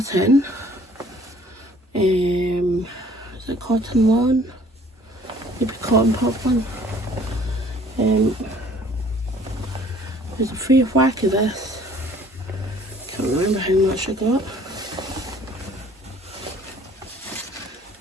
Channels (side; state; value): both; normal; correlation 0.55